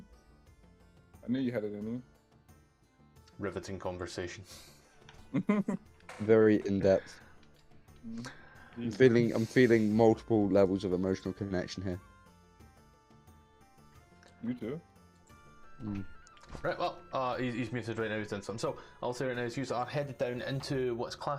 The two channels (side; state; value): both; identical; correlation 1.00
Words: I knew you had it in Riveting conversation. you. Very in depth. I'm feeling multiple levels of emotional connection here. You too. Right, well, he's muted right now, he's done something. So, I'll say right now, is you are headed down into what's